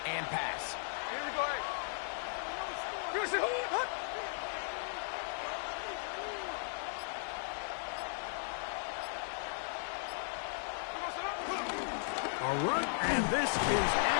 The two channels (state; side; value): silent; right; 53 dB below the other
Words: and pass. Here we go. A run, and this is